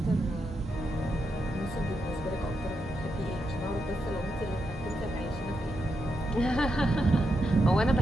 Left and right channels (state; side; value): normal; both; correlation 0.84